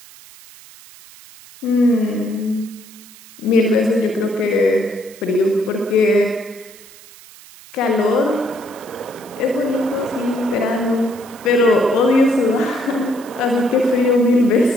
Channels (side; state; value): right; noise; hiss, 21 dB below the sound